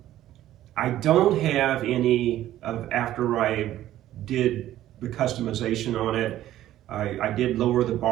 I don't have any of after I did the customization on it. I did lower the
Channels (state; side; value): quieter; left; 13.3 dB